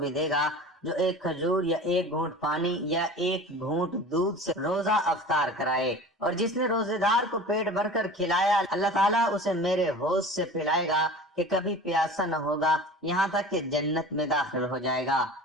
دے گا جو ایک کھجور یا ایک گھونٹ پانی یا ایک گھونٹ دودھ سے روزہ افطار کرائے، اور جس نے روزے دار کو پیٹ بھر کر کھلایا اللہ تعالیٰ اسے میرے حوض سے پلائے گا کہ کبھی پیاسا نہ ہوگا یہاں تک کہ جنت میں داخل ہو جائے گا۔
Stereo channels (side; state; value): both; normal; correlation 0.38